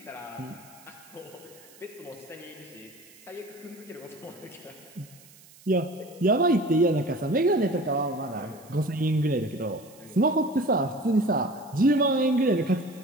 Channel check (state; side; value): noise; right; hiss, 24 dB below the sound